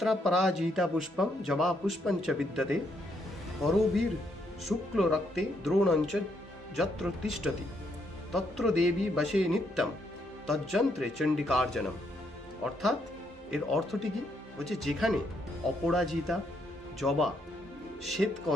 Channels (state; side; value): normal; both; correlation 0.75